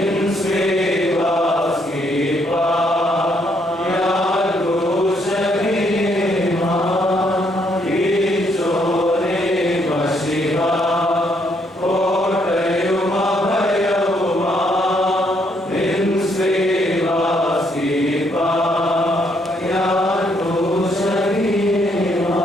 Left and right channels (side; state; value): both; normal; correlation 0.72